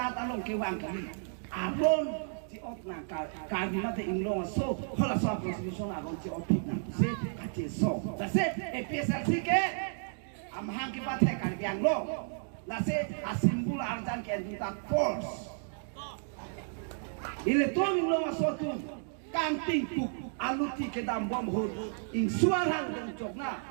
along ke wang kali aron si op na ka mate inglong so hola so constitution aron si op na se ka che so da se e pesal si ke amhang ki bath hai kar biang lo la se asimbul arjan ke duta force ile to min lo masotu kanting tuk aluti ke dam bom hod ing suarang dong chokna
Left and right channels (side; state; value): left; silent; digital silence